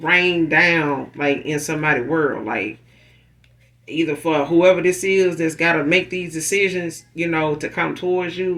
rain down, like in somebody's world. Like either for whoever this is that's got to make these decisions, to come towards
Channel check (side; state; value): both; identical; correlation 1.00